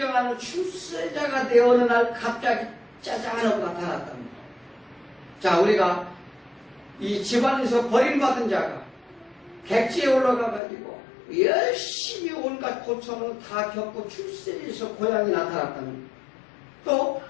출세자가 되어 어느 날 갑자기 짜잔하고 나타났답니다. 자, 우리가 이 집안에서 버림받은 자가 객지에 올라가가지고 열심히 온갖 고통을 다 겪고 출세에서 고향이 나타났답니다. 또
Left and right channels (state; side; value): drops out; right; at 10.6 s